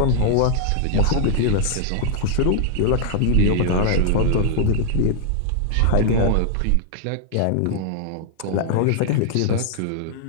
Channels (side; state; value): both; different; correlation 0.00